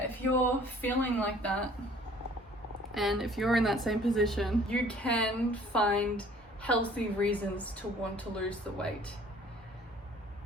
if you're feeling like that, and if you're in that same position, you can find healthy reasons to want to lose the weight,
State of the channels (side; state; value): both; normal; correlation 0.54